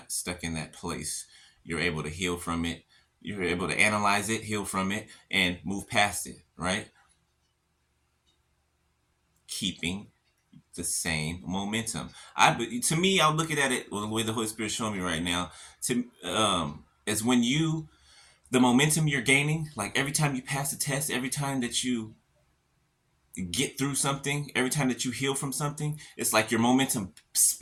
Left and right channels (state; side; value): identical; both; correlation 1.00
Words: stuck in that place. You're able to heal from it. You're able to analyze it, heal from it, and move past it, right? Keeping the same momentum. To me, I'm looking at it, well, the way the Holy Spirit showing me right now, is when the momentum you're gaining, like every time you pass a test, every time that you get through something, every time that you heal from something, it's like your momentum